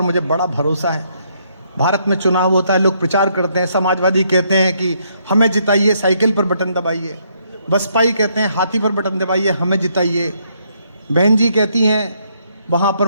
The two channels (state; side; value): inverted; both; correlation -0.72